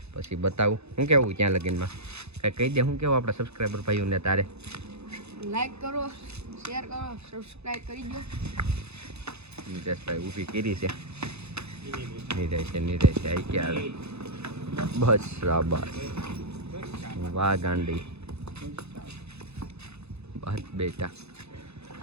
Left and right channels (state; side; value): late; left; 0.80 ms